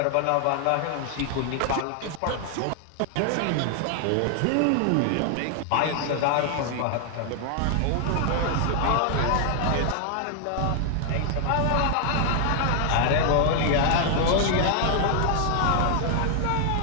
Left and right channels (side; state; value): both; different; correlation 0.00